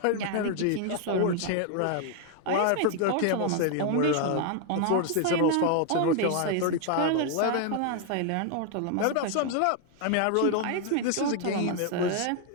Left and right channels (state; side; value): different; both; correlation 0.00